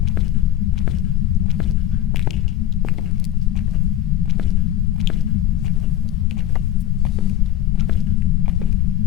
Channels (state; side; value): quieter; right; 12.5 dB